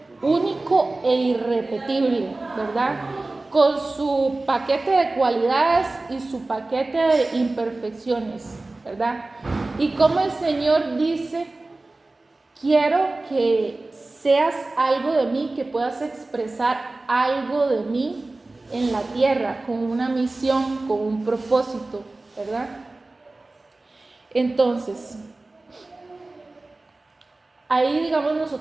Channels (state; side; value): quieter; left; 3.1 dB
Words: único e irrepetible, ¿verdad? Con su paquete de cualidades y su paquete de imperfecciones, ¿verdad? Y como el Señor dice, quiero que seas algo de mí, que puedas expresar algo de mí en la tierra, con una misión, con un propósito, ¿verdad? Entonces, ahí, digamos,